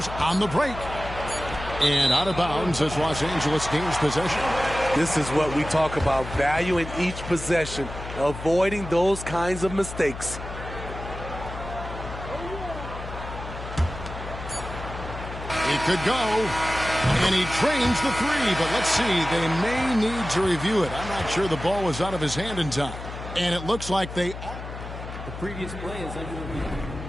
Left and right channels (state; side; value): noise; left; hum, 10 dB below the sound